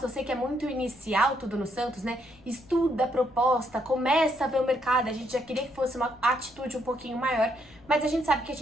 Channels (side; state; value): left; noise; rumble, 26 dB below the sound